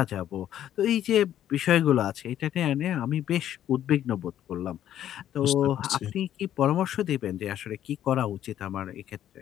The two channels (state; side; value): quieter; right; 11.3 dB